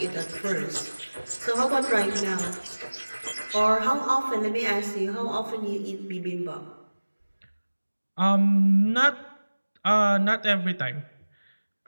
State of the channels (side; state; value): both; inverted; correlation -1.00